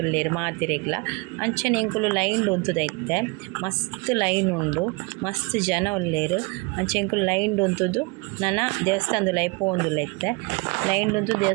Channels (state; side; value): quieter; left; 28.1 dB